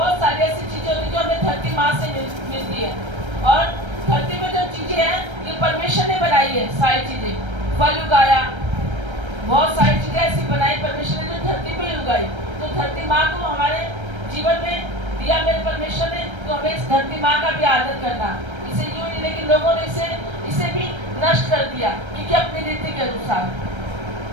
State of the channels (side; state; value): left; late; 1.3 ms